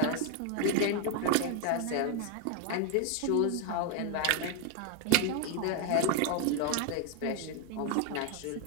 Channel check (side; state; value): both; different; correlation 0.00